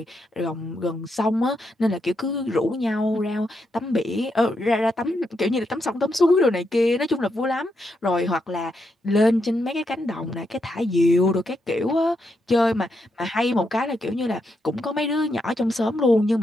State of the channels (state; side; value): normal; both; correlation 0.81